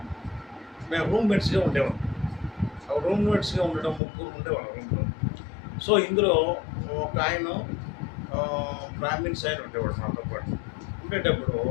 మేము రూమ్మేట్స్గా ఉండేవాళ్ళం. రూమ్మేట్స్గా ఉండడం 3 ఉండేవాళ్ళం రూమ్లో. సో ఇందులో ఒక ఆయన బ్రాహ్మిన్స్ ఆయన ఉండేవాడు మాతో పాటు. ఉండేటప్పుడు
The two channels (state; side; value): drops out; right; at 4.0 s